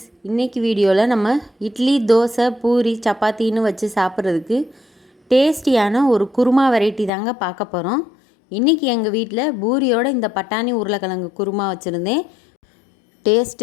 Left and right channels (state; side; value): drops out; right; at 7.1 s